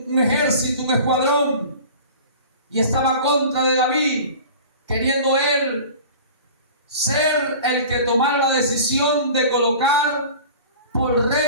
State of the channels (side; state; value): both; inverted; correlation -0.40